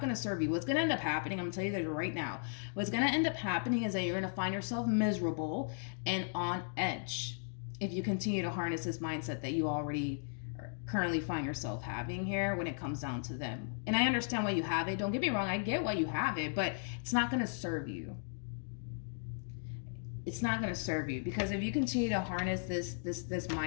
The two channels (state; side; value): silent; right; digital silence